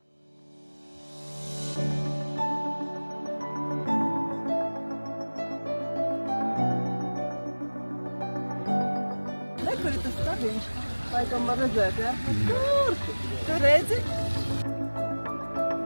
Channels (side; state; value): both; inverted; correlation -1.00